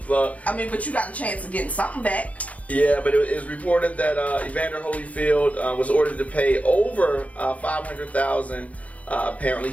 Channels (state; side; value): late; right; 0.068 ms